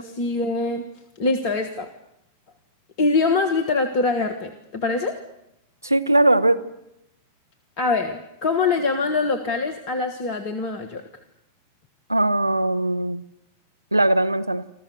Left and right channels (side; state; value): both; inverted; correlation -0.49